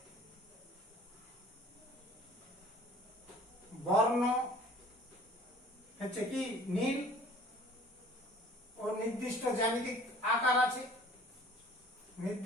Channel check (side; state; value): both; normal; correlation 0.49